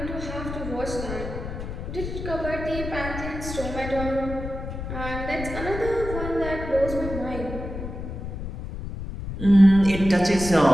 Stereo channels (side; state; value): left; noise; rumble, 7 dB below the sound